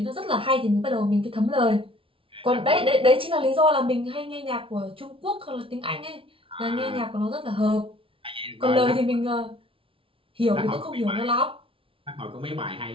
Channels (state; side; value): late; left; 0.26 ms